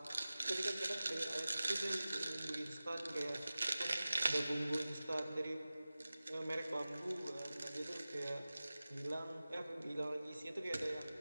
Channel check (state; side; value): inverted; both; correlation -0.96